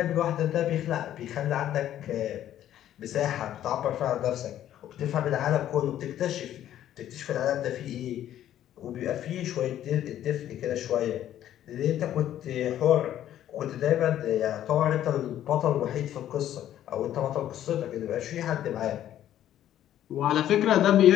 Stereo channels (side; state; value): right; quieter; 11.7 dB